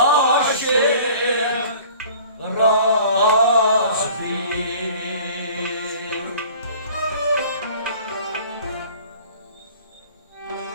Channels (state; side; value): inverted; both; correlation -0.48